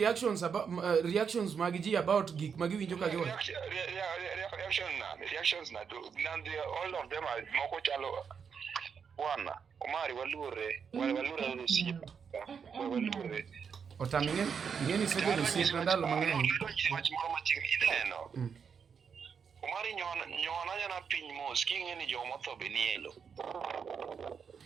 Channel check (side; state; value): left; quieter; 6.6 dB